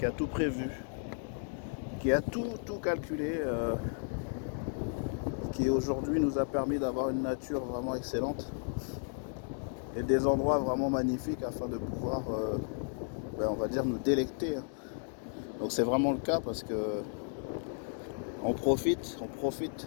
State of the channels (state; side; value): silent; right; 55 dB below the other